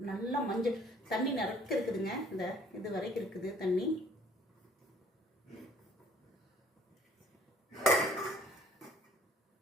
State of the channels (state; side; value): normal; both; correlation 0.57